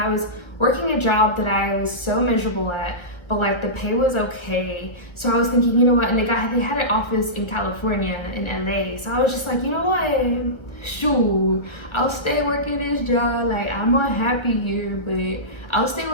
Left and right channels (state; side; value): late; right; 1.4 ms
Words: was working a job that I was so miserable at, but like the pay was okay. So I was thinking, you know what, and they had an office in California, in LA. So I was just like, you know what, shoot, I'll stay working this job. Like I'm unhappy here, but I'll stay